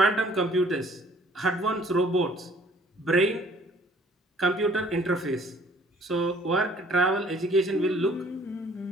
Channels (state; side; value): normal; both; correlation 0.57